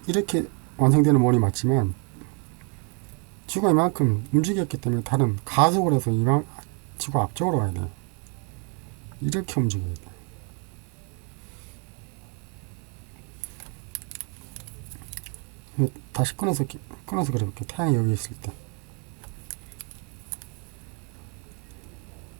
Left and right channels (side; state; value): left; quieter; 36.9 dB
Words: 이렇게 완성되는 원이 맞지만 지구가 이만큼 움직였기 때문에 달은 가속을 해서 지구 앞쪽으로 가야 돼요. 이렇게 움직여야 돼요. 다시 끊어서 그려볼게요. 태양이 여기 있을 때